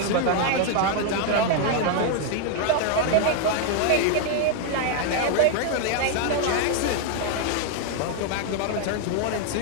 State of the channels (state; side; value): different; both; correlation 0.00